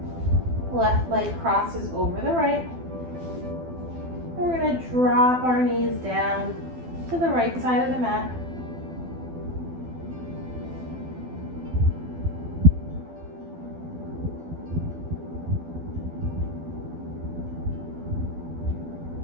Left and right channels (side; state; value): left; late; 12 ms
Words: Left leg crosses over the right. And we're going to drop our knees down to the right side of the mat.